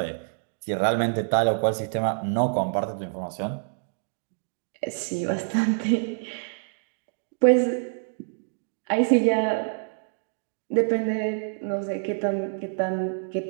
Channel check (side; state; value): left; silent; digital silence